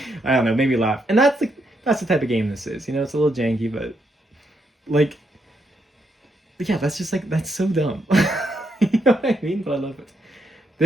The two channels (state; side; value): normal; both; correlation 0.78